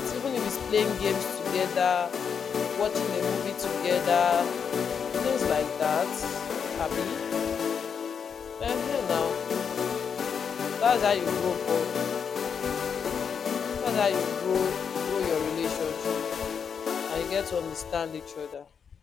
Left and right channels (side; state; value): right; quieter; 6.8 dB